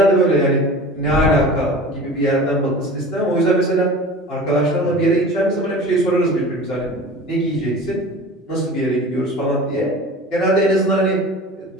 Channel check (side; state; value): both; normal; correlation 0.38